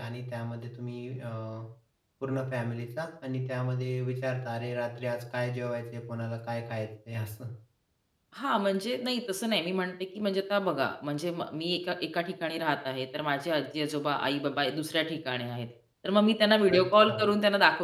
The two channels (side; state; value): both; identical; correlation 1.00